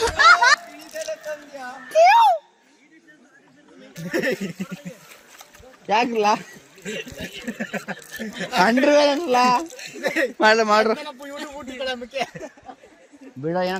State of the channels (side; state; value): both; identical; correlation 1.00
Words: ಯಾಕಲ್ಲ ಅಂಡ್ರಲ್ಲ ಮಾಡ್ರ ಬಿಡ, ಏನೋ